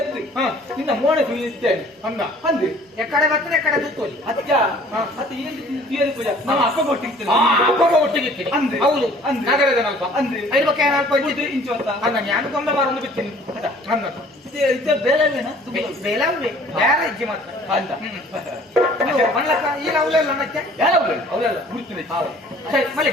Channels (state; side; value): normal; both; correlation 0.53